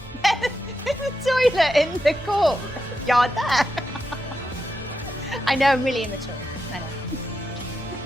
a toilet in the courtyard there. I know, I'm really immature. I know.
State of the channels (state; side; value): normal; both; correlation 0.86